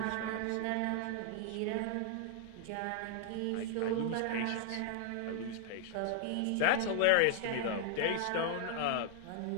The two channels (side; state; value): both; different; correlation 0.00